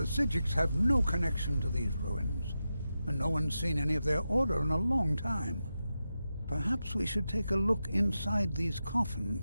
Psijics have no connection to these ruins, and no one's seen any of their order in a long time. Perhaps we should take a look inside these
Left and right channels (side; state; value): both; inverted; correlation -0.90